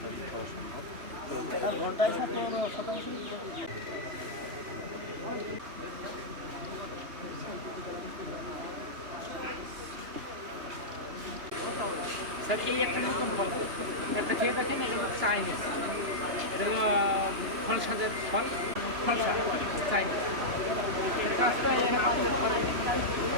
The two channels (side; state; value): left; late; 2.9 ms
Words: করা সম্ভব। ঘন্টায় স্যার এই একটা নতুন ফল একটা খেয়ে দেখেন, এটা হলো চাইনিজ, এটা হলো ফলসাদের ফল, ফলসা চাইনিজ। কাজটা এরকম